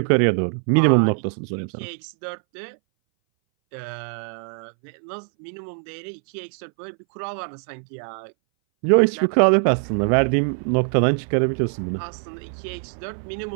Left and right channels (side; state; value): left; silent; 61 dB below the other